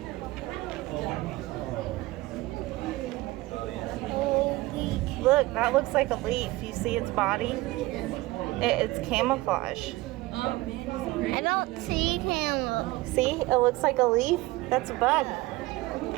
Holy. Look, that looks like a leaf. You see its body? It's camouflage. I don't see him. See? It looks like a leaf. That's a bug.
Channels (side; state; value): left; quieter; 19.8 dB